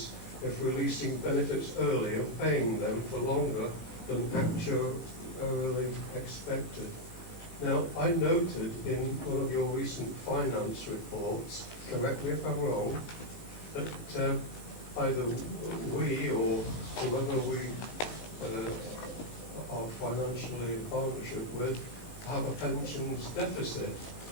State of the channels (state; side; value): late; right; 18 ms